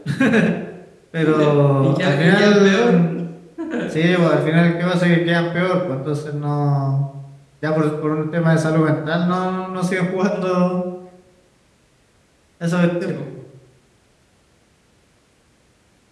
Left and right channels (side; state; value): both; identical; correlation 1.00